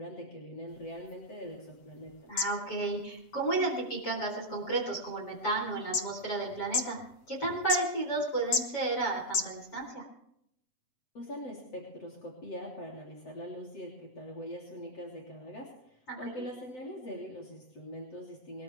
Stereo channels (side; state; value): right; late; 8.7 ms